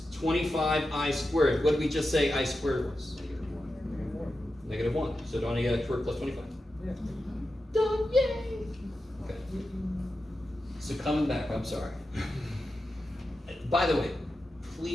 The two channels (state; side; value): normal; both; correlation 0.90